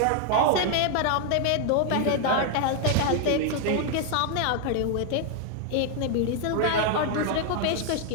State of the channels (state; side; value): different; both; correlation 0.00